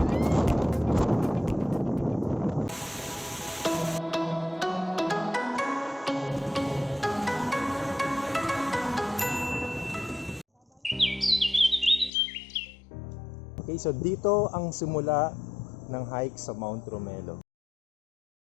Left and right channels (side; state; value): right; drops out; at 12.1 s